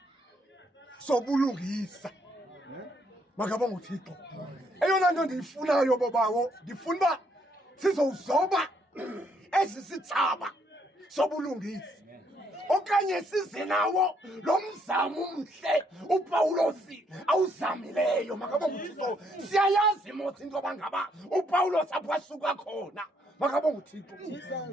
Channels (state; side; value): normal; both; correlation 0.71